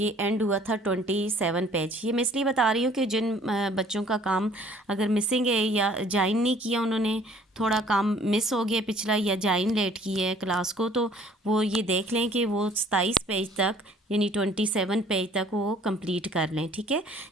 एंड हुआ था 27 पेज। ये मैं इसलिए बता रही हूँ कि जिन बच्चों का काम अगर मिसिंग है या ज्वाइन नहीं किया, उन्होंने थोड़ा काम मिस हो गया पिछला या ज्वाइन लेट की है क्लास को, तो वो ये देख लें कि वो 27 पेज तक यानी 27 पेज तक वो कंप्लीट कर लें। ठीक है,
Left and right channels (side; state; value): both; normal; correlation 0.55